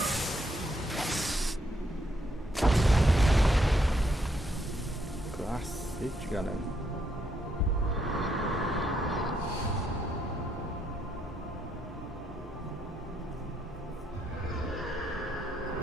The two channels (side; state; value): both; normal; correlation 0.75